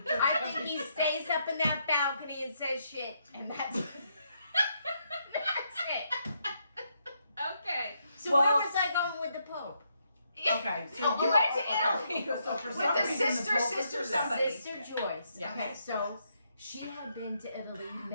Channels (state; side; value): inverted; both; correlation -0.77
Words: church. I think he stays up in that balcony and says shit, and that's that's it. Okay. So Well- where was I going with the Pope? Okay, so You went to Italy So for with some the reason, sister, the Pope was sister, there. somebody. Sister Joyce. Yes. Okay, so Yes. she had been to Italy